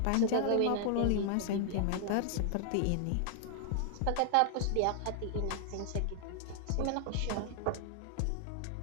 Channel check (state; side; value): different; both; correlation 0.00